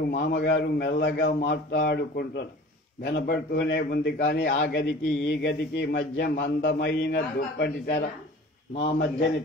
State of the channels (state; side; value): normal; both; correlation 0.43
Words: మామగారు మెల్లగా మాట్లాడుకుంటున్నారు. వినపడుతూనే ఉంది. కానీ ఆ గదికి ఈ గదికి మధ్య మందమైన దుప్పటి తెర, మా మధ్యని